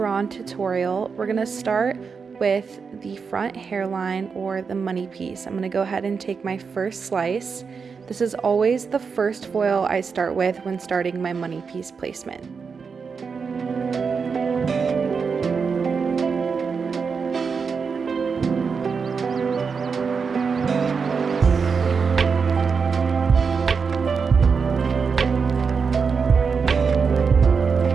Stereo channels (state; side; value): quieter; left; 5.5 dB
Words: tutorial. We're going to start with the front hairline or the money piece. I'm going to go ahead and take my first slice. This is always the first foil I start with when starting my money piece placement.